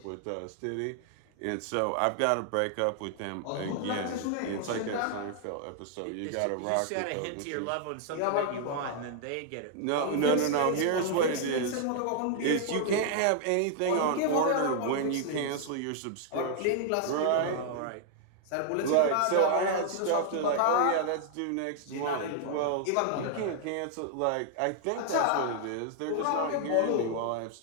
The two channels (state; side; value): different; both; correlation 0.00